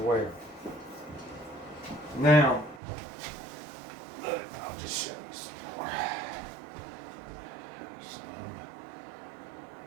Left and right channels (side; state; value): left; drops out; at 2.8 s